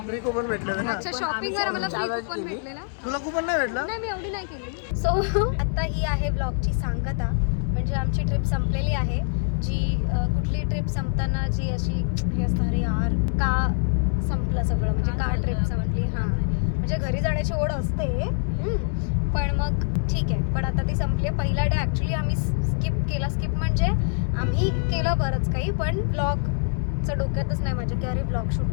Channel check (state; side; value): silent; right; 62 dB below the other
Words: फ्री कुपन भेटलेलं ना. अच्छा शॉपिंग वर आम्हाला फ्री कुपन भेटलेला. तुला कुपन नाही भेटलं? नाही मी एवढी नाही केली. सो आता ही आहे ब्लॉगची सांगता. म्हणजे आमची ट्रिप संपलेली आहे. जी कुठली ट्रिप संपताना जी अशी हे असतं अरे यार का संपलं सगळं म्हणजे का ट्रिप संपली. हां म्हणजे घरी जाण्याची ओढ असते पण मग ठीक आहे. पण आता ती संपली आहे. पहिला डे ॲक्च्युली आम्ही स्किप म्हणजे आम्ही केलं बरंच काही पण ब्लॉगचं डोक्यातच नाही माझ्या की अरे ब्लॉग